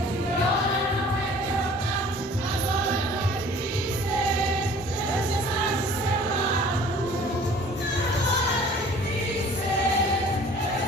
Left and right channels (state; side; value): normal; both; correlation 0.50